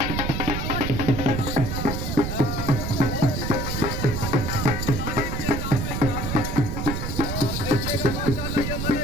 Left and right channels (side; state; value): right; noise; rumble, 2 dB below the sound